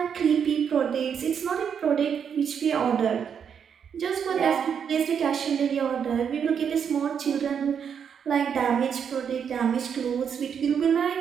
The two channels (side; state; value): left; quieter; 7.5 dB